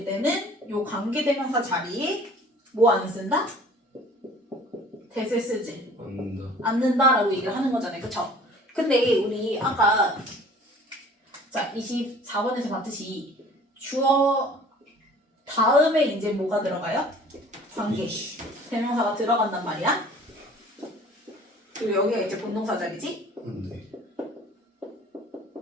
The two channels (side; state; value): both; normal; correlation 0.49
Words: 때는 요 관계대명사 자리에 뭐 안 쓴다? 대세 쓰지 않는다라고 얘기를 하는 거잖아요. 그쵸? 근데 우리 아까 자 24번에서 봤듯이 주어 다음에 이제 뭐가 들어가요? 관계 대명사가 들어간단 말이야. 그리고 여기가 이제 본동사 자리지?